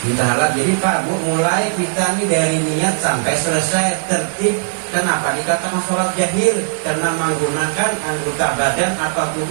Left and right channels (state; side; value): silent; left; digital silence